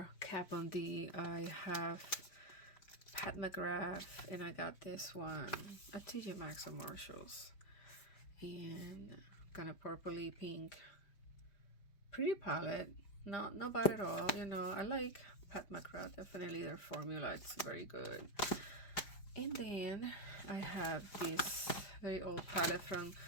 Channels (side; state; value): right; late; 5.0 ms